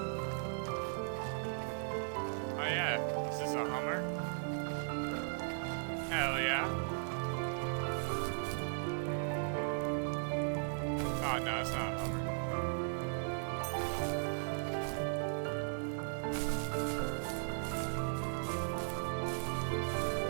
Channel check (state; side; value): silent; left; digital silence